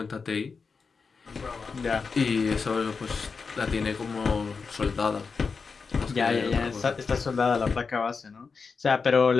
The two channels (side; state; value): right; quieter; 5.0 dB